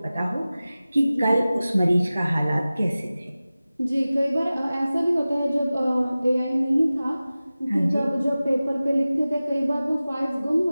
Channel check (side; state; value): both; inverted; correlation -0.97